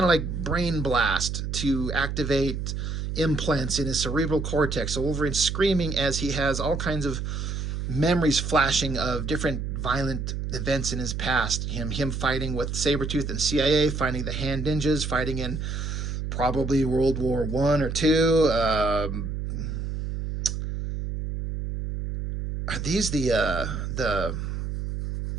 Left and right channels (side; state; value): right; noise; hum, 4 dB below the sound